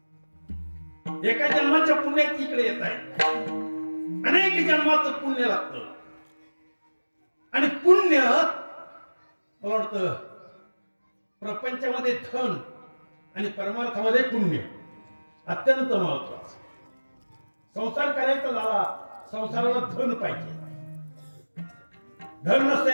एका जन्माच्या पुण्यात इकडे येत आहे, अनेक जन्माचं पुण्य लागतं. आणि पुण्य मला वाटतं प्रपंचामध्ये धन आणि परमार्थामध्ये पुण्य अत्यंत महत्वाचं. संसार करायचा झाला, संसाराला धन पाहिजे. धन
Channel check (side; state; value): both; inverted; correlation -1.00